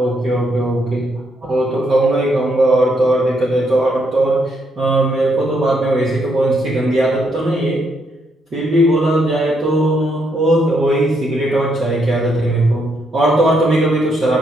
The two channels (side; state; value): both; normal; correlation 0.76